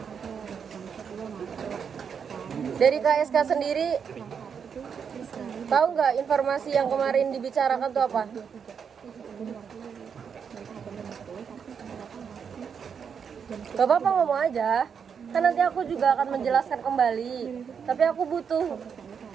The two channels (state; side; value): quieter; left; 6.9 dB